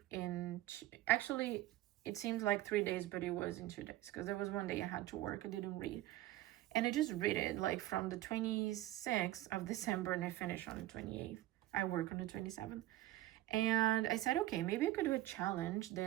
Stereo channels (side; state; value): left; quieter; 15.5 dB